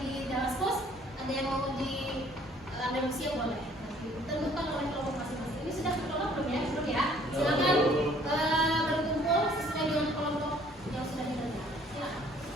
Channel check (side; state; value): both; normal; correlation 0.58